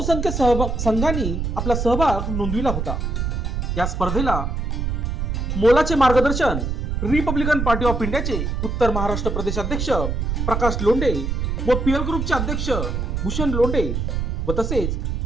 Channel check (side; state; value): right; noise; rumble, 1 dB below the sound